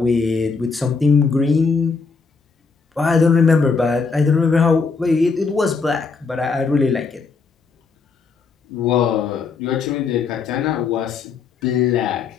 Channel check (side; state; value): right; quieter; 4.8 dB